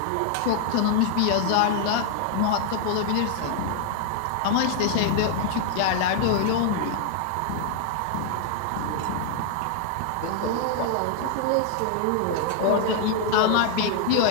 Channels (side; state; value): both; different; correlation 0.00